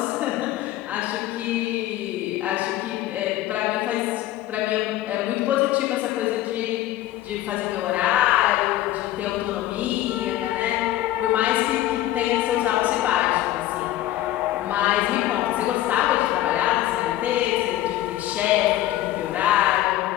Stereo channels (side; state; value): right; quieter; 14.4 dB